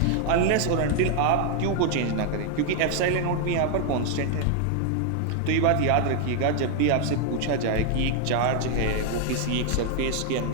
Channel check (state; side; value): different; both; correlation 0.00